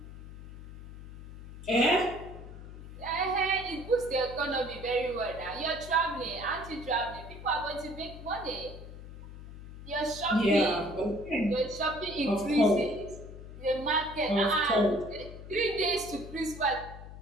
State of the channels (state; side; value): noise; left; hum, 13 dB below the sound